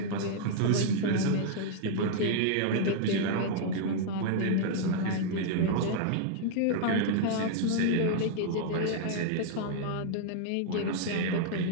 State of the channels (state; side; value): different; both; correlation -0.01